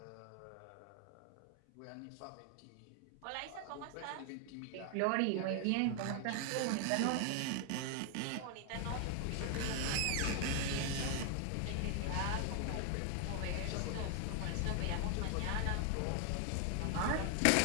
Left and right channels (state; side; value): different; both; correlation 0.00